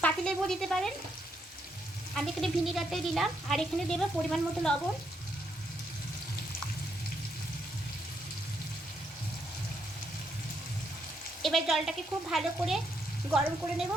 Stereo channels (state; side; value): normal; both; correlation 0.76